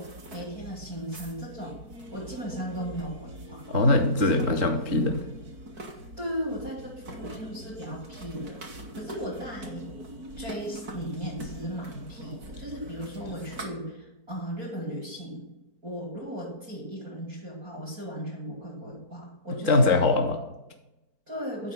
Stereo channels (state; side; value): late; left; 4.4 ms